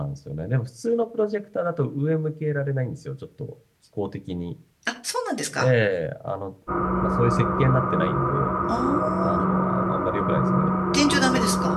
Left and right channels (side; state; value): both; identical; correlation 1.00